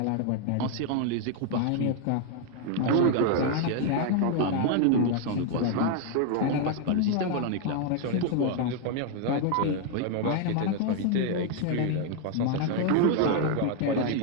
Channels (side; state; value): both; different; correlation 0.00